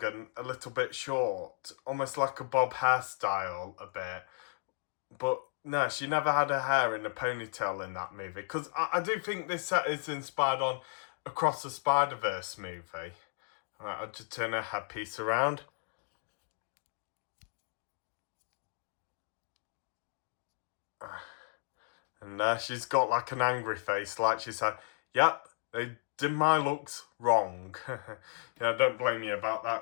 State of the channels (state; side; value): silent; right; digital silence